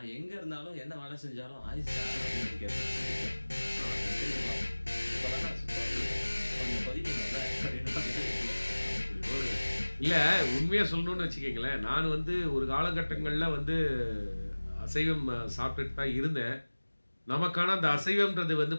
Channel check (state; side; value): inverted; both; correlation -1.00